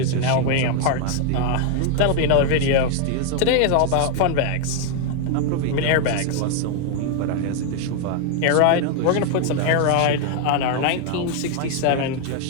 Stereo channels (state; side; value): different; both; correlation 0.00